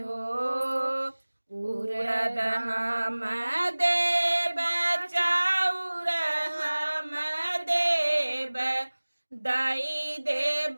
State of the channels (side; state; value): both; inverted; correlation -1.00